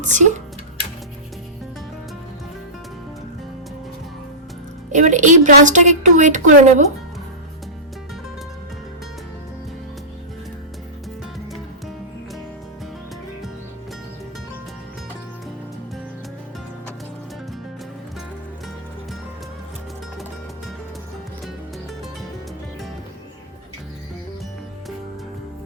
এবার এই ব্রাশটাকে একটু ওয়েট করে নেব।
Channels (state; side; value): normal; both; correlation -0.18